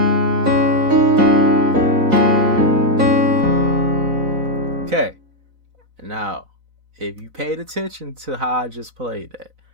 Okay. Now, if you paid attention to how I just played that,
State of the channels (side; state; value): left; late; 4.0 ms